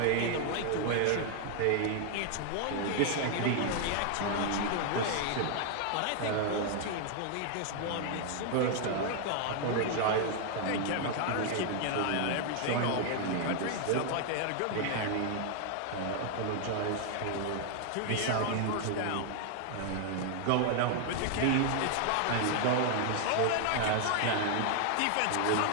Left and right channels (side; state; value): both; different; correlation 0.00